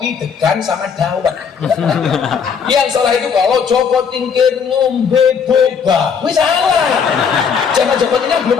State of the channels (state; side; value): quieter; right; 6.5 dB